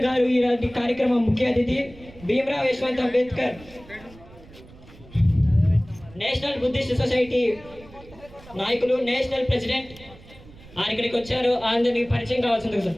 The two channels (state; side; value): noise; right; rumble, 21 dB below the sound